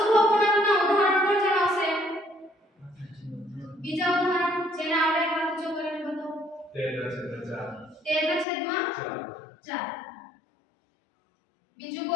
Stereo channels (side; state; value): right; drops out; at 8.5 s